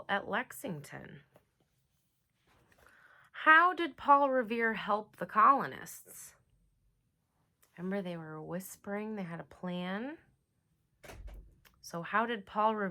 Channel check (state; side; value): identical; both; correlation 1.00